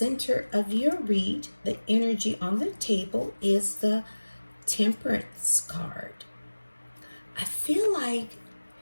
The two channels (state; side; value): inverted; both; correlation -1.00